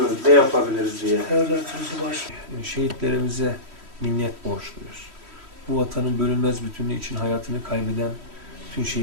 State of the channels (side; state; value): left; late; 3.1 ms